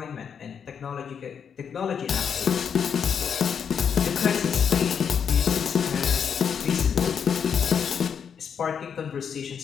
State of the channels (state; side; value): quieter; right; 7.3 dB